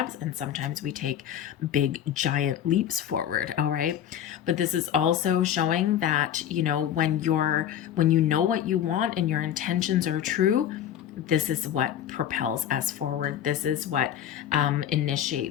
and sometimes we take big giant leaps forward. All right, but this is also showing that when you know what you want and your intentions are true, this is what propels us forward. This is what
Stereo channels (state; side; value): quieter; right; 10.3 dB